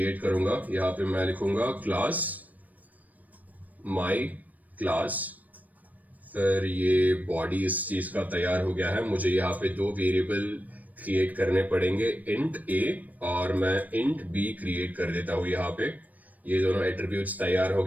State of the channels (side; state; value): left; late; 0.077 ms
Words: करूंगा, यहाँ पे मैं लिखूंगा क्लास माई क्लास, फिर ये बॉडी इस चीज का तैयार हो गया है। मुझे यहाँ पे दो वेरिएबल क्रिएट करने पड़ेंगे, इंट ए और मैं इंट बी क्रिएट कर देता हूँ यहाँ पे। ये दोनों एट्रीब्यूट्स तैयार हो